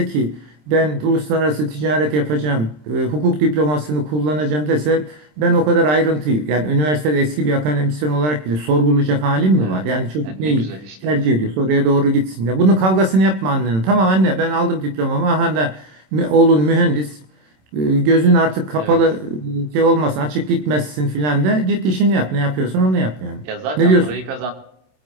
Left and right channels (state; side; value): late; left; 27 ms